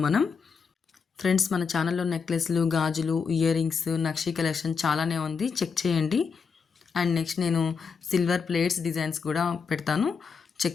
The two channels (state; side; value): quieter; right; 5.7 dB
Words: మనం ఫ్రెండ్స్ మన ఛానల్లో నెక్లెస్లు, గాజులు, ఇయర్ రింగ్స్, నక్షీ కలెక్షన్ చాలానే ఉంది, చెక్ చేయండి. అండ్ నెక్స్ట్ నేను సిల్వర్ ప్లేట్స్ డిజైన్స్ కూడా పెడతాను,